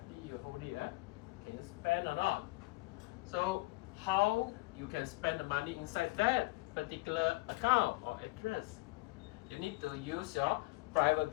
you hold it. Can you spend or not? So how you can spend the money inside that particular account or address? You need to use your private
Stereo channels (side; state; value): right; quieter; 23.2 dB